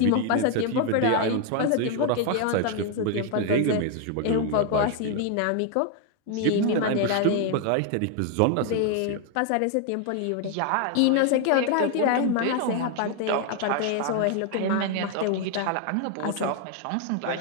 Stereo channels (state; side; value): different; both; correlation 0.01